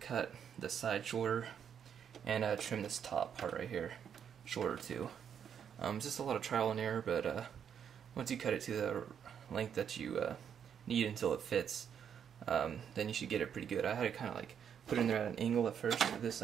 the side shorter, and trim this top part right here shorter too. It's just a lot of trial and error, but once you cut it to the length that you need until it fits, then you should get it pretty good. I had to kind of like put it in there at an angle at first, this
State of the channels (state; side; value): quieter; left; 8.1 dB